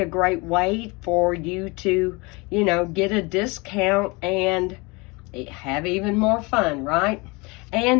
a great way for you to, get a discount and have even more fun, right?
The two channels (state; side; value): quieter; right; 26.6 dB